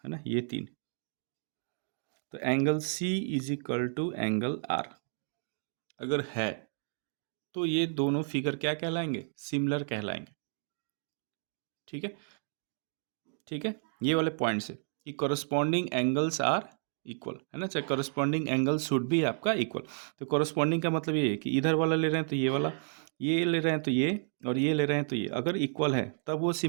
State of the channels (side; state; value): left; silent; digital silence